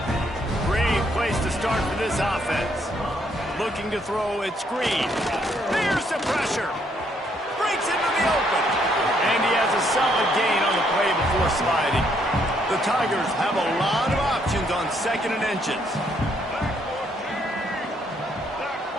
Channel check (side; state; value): both; normal; correlation 0.71